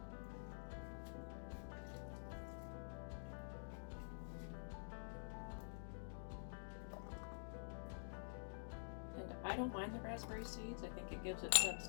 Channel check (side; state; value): right; silent; digital silence